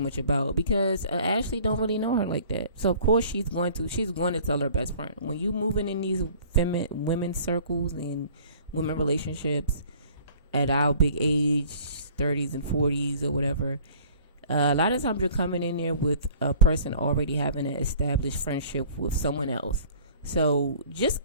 about, because Ashley don't really know her like that. So of course she's going to tell her best friend. When you moving in these women's circles and women relationships at our big age, 30s and 40s or whatever, a lot of times you're coming in there with a person already having an established friendship with someone else. So just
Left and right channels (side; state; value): both; inverted; correlation -0.50